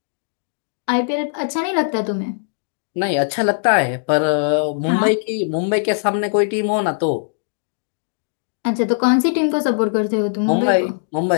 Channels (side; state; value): right; silent; digital silence